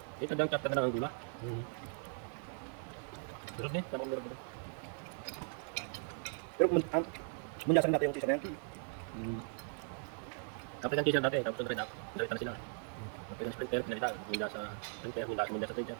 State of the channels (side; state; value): left; silent; 52 dB below the other